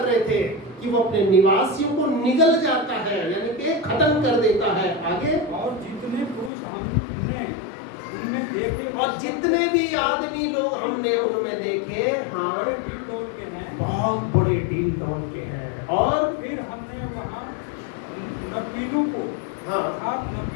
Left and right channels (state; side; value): drops out; right; at 6.5 s